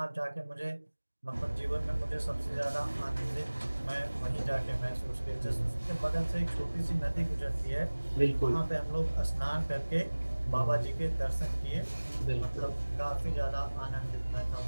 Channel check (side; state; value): both; inverted; correlation -1.00